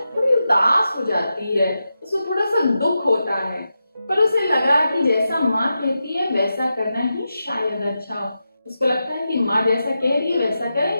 थोड़ी उदास हो जाती है, उसको थोड़ा सा दुख होता है, पर उसे लगा कि जैसा माँ कहती है वैसा करना ही शायद अच्छा हो। उसको लगता है कि माँ जैसा कह रही है वैसा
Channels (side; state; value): both; inverted; correlation -0.89